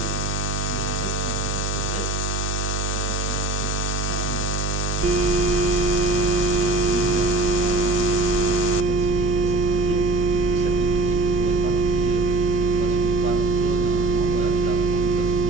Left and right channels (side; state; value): right; noise; hum, 3 dB below the sound